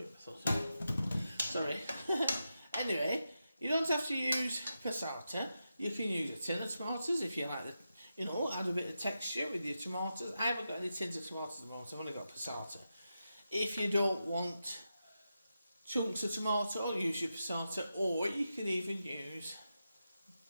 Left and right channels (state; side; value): inverted; both; correlation -0.89